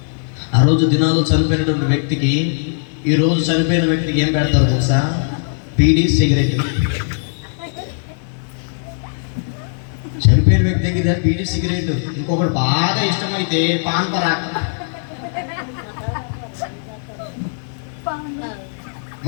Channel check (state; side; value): silent; right; digital silence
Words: ఆ రోజు దినాలు చనిపోయినటువంటి వ్యక్తికి, ఈ రోజు చనిపోయిన వ్యక్తికి ఏం పెడతారు తెలుసా? బీడీ, సిగరెట్. చనిపోయిన వ్యక్తి దగ్గర బీడీ, సిగరెట్. ఇంకొకటి బాగా ఇష్టమైతే పాన్ పరాక్.